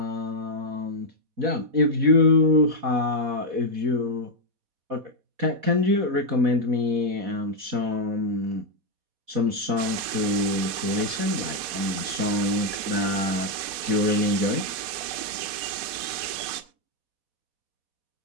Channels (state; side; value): late; left; 4.1 ms